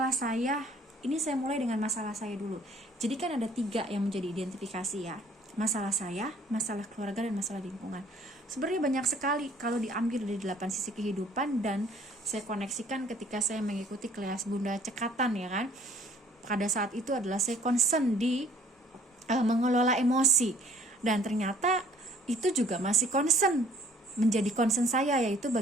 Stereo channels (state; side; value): normal; both; correlation 0.58